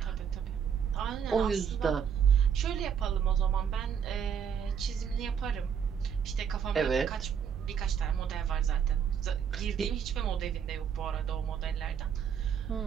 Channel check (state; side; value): quieter; left; 7.7 dB